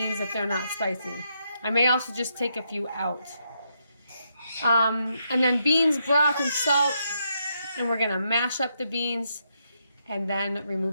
if they're not spicy. I may also just take a few out. And then beans, broth, and salt. And we're going to mash up the beans and then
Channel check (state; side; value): inverted; both; correlation -0.79